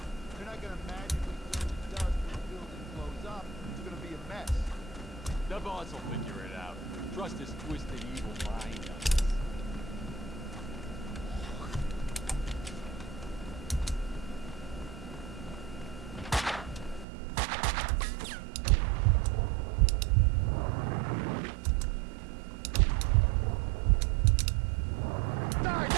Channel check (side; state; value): left; drops out; at 17.1 s